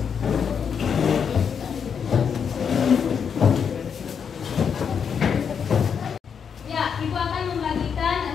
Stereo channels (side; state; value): right; quieter; 7.0 dB